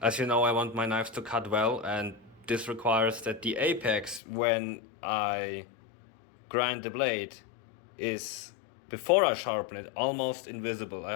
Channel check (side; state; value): right; drops out; at 4.2 s